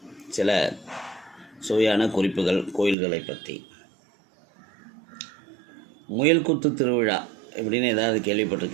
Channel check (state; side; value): drops out; left; at 3.0 s